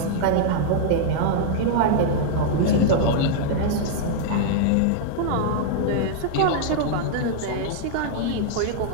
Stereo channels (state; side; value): different; both; correlation -0.01